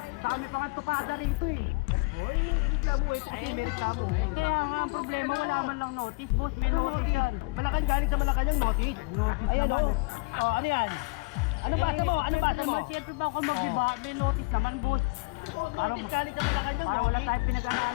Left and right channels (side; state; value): right; quieter; 28.2 dB